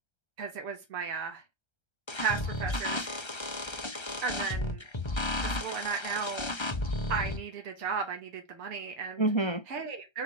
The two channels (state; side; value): late; right; 1.3 ms